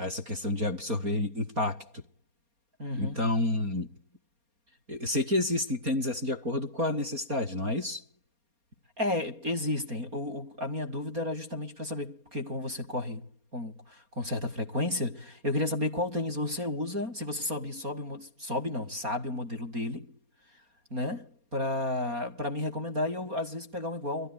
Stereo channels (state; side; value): late; left; 4.3 ms